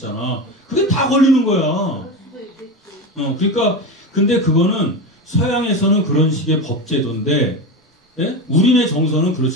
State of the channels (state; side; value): normal; both; correlation 0.21